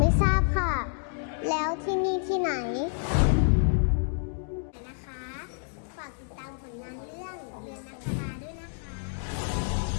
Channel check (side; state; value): right; silent; digital silence